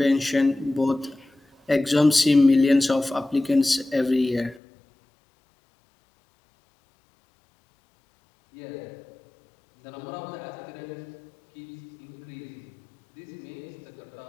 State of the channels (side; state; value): right; drops out; at 4.6 s